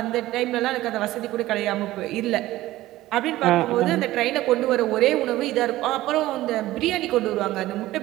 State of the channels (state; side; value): quieter; left; 16.2 dB